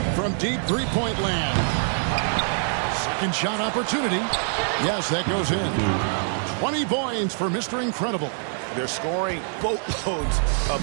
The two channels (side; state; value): left; silent; 62 dB below the other